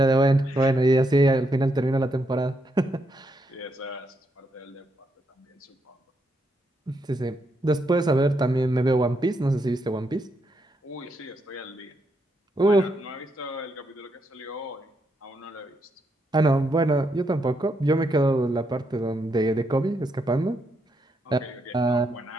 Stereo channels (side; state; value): both; normal; correlation 0.79